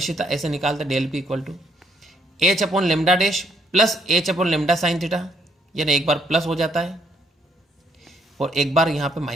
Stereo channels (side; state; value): both; normal; correlation 0.70